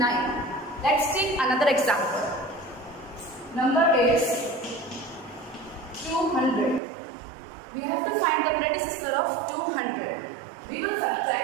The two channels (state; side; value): drops out; left; at 6.8 s